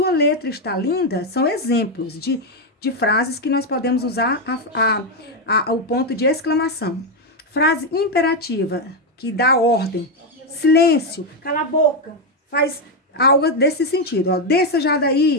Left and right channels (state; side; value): normal; both; correlation 0.05